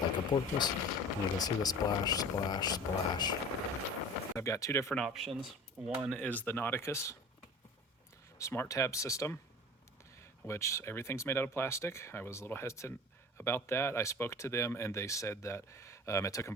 a porpoise, and you can see the splash, splash, splash. I've got 2 different options. One is the Nauticus smart tab system, which everything's made out of plastic. I was a little hesitant about that. I spoke to them and they said that it took them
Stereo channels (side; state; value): both; normal; correlation 0.39